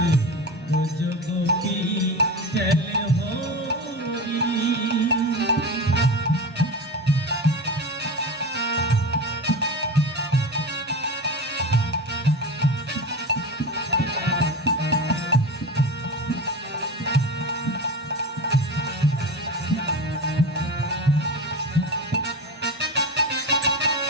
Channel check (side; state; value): both; normal; correlation 0.26